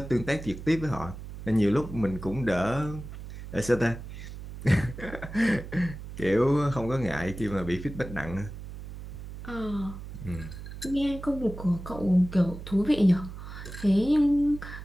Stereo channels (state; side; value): noise; right; hum, 11 dB below the sound